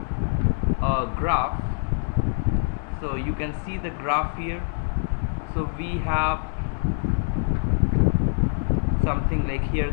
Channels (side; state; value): right; silent; digital silence